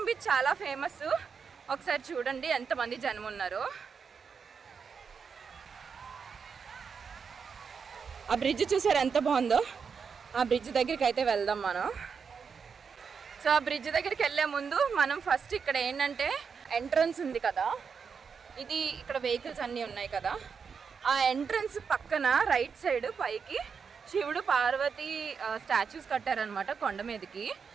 బీచ్ చాలా ఫేమస్. ఒకసారి చూడండి ఎంతమంది జనం ఉన్నారో. ఆ బ్రిడ్జ్ చూసారు ఎంత బాగుందో. ఆ బ్రిడ్జ్ దగ్గరికి అయితే వెళ్దాం మనం. సో ఆ బ్రిడ్జ్ దగ్గరికి వెళ్ళే ముందు మనం ఫస్ట్ ఇక్కడ ఏంటంటే ఎంట్రన్స్ ఉంది కదా, ఇది ఇక్కడ వెహికల్స్ అన్నీ ఉన్నాయి కదా, ఆ ఎంట్రన్స్ పక్కన రైట్ సైడ్ పైకి శివుడు పార్వతి స్టాచ్యూస్ కట్టారనమాట కొండ మీదకి.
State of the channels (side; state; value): left; quieter; 6.0 dB